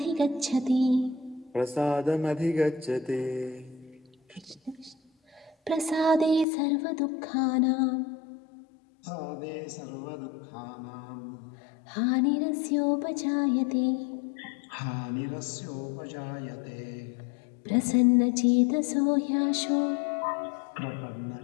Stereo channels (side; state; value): right; drops out; at 6.5 s